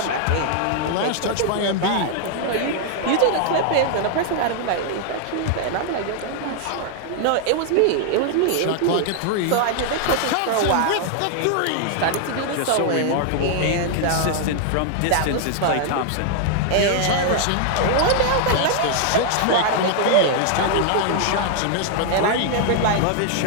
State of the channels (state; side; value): different; both; correlation 0.00